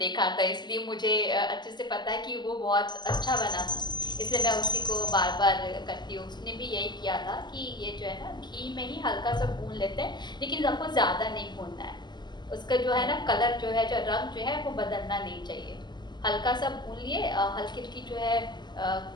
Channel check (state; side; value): late; right; 0.21 ms